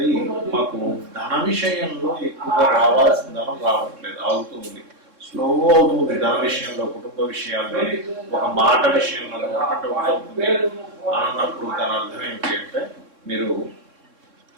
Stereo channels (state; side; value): late; left; 3.7 ms